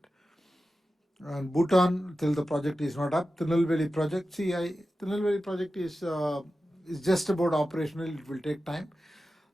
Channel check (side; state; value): both; normal; correlation 0.93